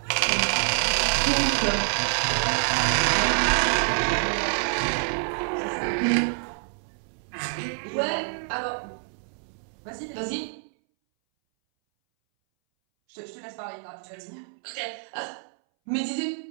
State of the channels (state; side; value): silent; left; 61 dB below the other